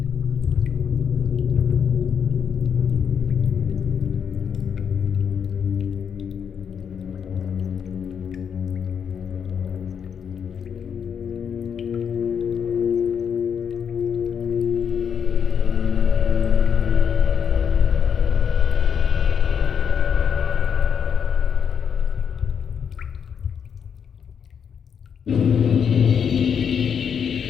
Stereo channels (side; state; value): right; quieter; 7.4 dB